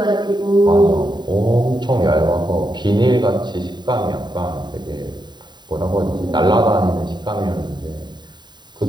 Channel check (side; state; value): left; late; 0.21 ms